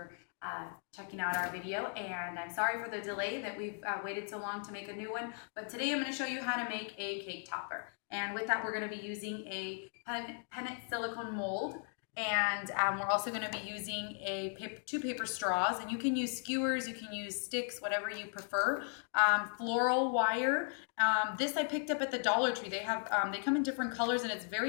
checking out our video, and I'm sorry for the delay that we've waited so long to make a new one, but today I'm going to show you how to make a cake topper. And with that, we're going to be using a pennant silicone mold, and we're also going to be using two paper straws, and you can use skewers, you can use sticks, whatever you prefer. Floral wire. This I picked up at the Dollar Tree. They have they come in different colors, and it's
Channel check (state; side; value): silent; right; 53 dB below the other